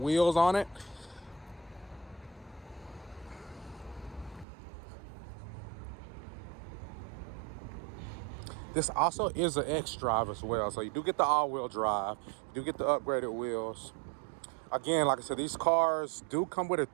on it. This also is an X drive as well. So you do get the all-wheel drive. You do get the upgraded wheels. Again, like I said, these cars do come with a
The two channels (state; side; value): drops out; left; at 4.5 s